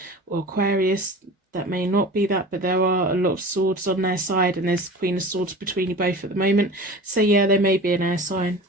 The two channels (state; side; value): normal; both; correlation 0.37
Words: or Aquarius. That may not be that, but there are a lot of swords on their side, and there's Queen of Swords between you both at the moment. So yeah, they may be an air sign.